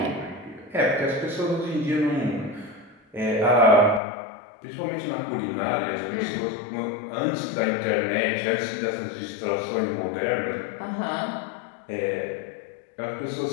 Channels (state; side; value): drops out; right; at 4.0 s